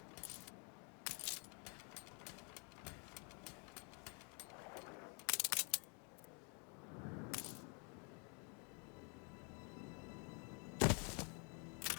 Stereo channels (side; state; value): right; quieter; 36.5 dB